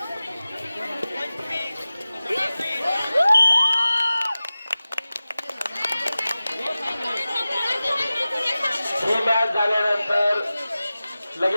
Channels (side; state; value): both; inverted; correlation -0.97